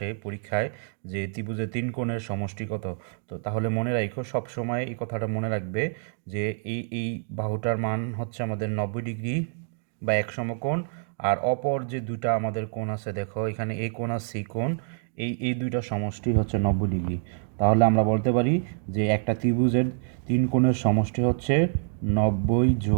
পরীক্ষায় যে ত্রিভুজের 3 কোণের সমষ্টি কত। তো তাহলে মনে রাখো সবসময় এই কথাটা মনে রাখবে যে এই বাহুটার মান হচ্ছে আমাদের 90 ডিগ্রি বা এক সমকোণ, আর অপর যে দুটা আমাদের কোণ আছে দেখো এখানে এই কোণ আর সি কোণ, এই দুইটা সমষ্টি হচ্ছে 90 ডিগ্রি। তাহলে আমরা বলতে পারি যে একটা ত্রিভুজের 3 কোণের সমষ্টি হচ্ছে 90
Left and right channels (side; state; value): left; silent; 60 dB below the other